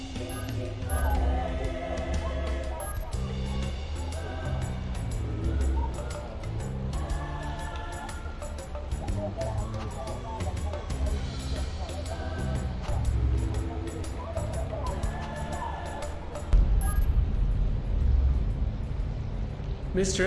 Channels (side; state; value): both; identical; correlation 1.00